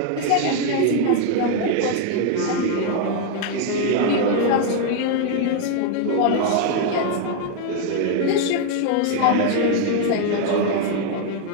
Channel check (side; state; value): both; different; correlation 0.00